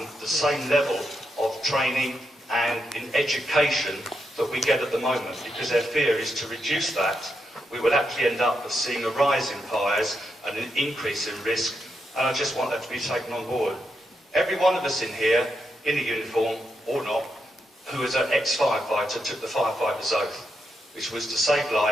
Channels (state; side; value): normal; both; correlation 0.83